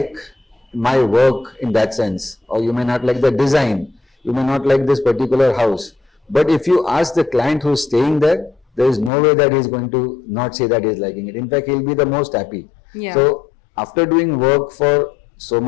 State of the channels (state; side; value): drops out; right; at 9.1 s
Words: my work in that sense, or you may not like the design, you may not like this particular house, but if you ask the client who's staying there, there is no way that he's going to not say that he's liking it. In fact, he'll be the most happy. Yeah. So after doing work for so